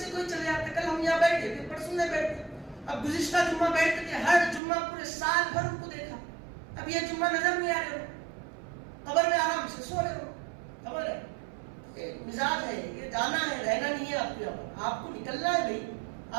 کوئی چلے جاتے, کل ہم یہاں بیٹھے, پھر پرسوں نہیں بیٹھتے. اب گزشتہ جمعہ بیٹھتے تھے, ہر جمعہ پورے سال بھر ان کو دیکھا. اب یہ جمعہ نظر نہیں آ رہے ہو, قبر میں آرام سے سو رہے ہو. سمجھ رہے؟ یہ مزاج ہے, یہ جانا ہے, رہنا نہیں ہے. آپ کو یہاں پر آپ کو نکلنا ہے بھائی.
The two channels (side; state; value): left; drops out; at 4.6 s